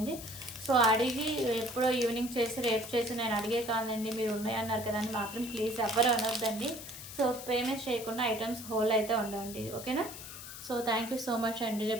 సో అడిగి ఎప్పుడో ఈవినింగ్ చేసి రేపు చేసి నేను అడిగే కాదండి మీరు ఉన్నాయన్నారు కదా అని మాత్రం ప్లీజ్ ఎవరు అనొద్దండి. సో పేమెంట్ చేయకుండా ఐటమ్స్ హోల్ అయితే ఉండండి. ఓకేనా. So thank you so much అండి.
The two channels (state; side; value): noise; left; hiss, 12 dB below the sound